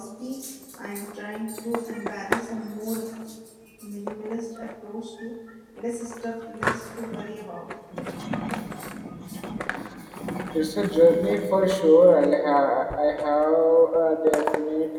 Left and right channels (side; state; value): both; identical; correlation 1.00